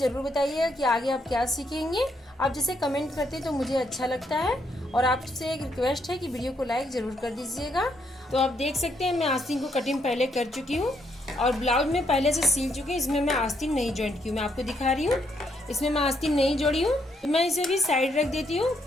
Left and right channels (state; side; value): normal; both; correlation 0.75